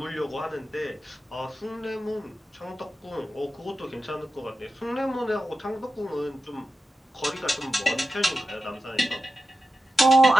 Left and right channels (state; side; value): normal; both; correlation 0.92